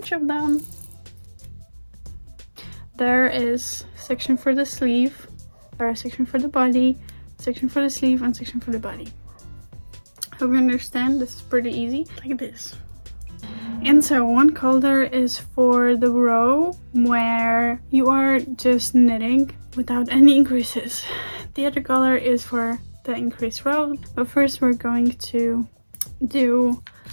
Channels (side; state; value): both; inverted; correlation -1.00